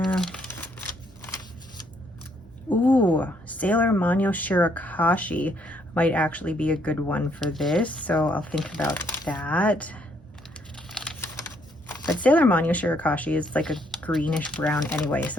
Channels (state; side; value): normal; both; correlation 0.70